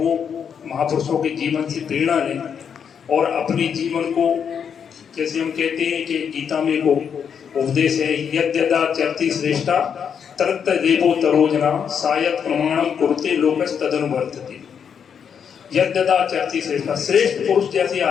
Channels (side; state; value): right; quieter; 7.4 dB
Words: महापुरुषों के जीवन से प्रेरणा लें और अपने जीवन को, जैसे हम कहते हैं कि गीता में को उपदेश है, यद्यदा चरति श्रेष्ठा तत्त देवो तरोजना सायत प्रमाणम कुरुते लोकस तदनुवर्तते। यद्यदा चरति श्रेष्ठा, श्रेष्ठ पुरुष जैसे